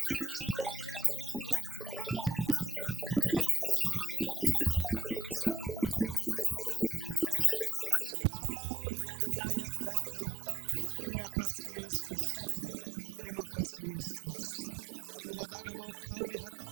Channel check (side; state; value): left; drops out; at 8.1 s